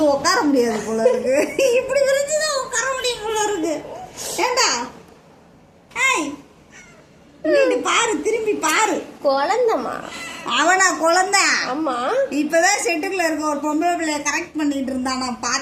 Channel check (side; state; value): both; identical; correlation 1.00